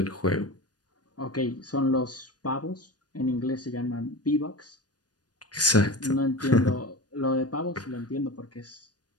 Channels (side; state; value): right; late; 0.69 ms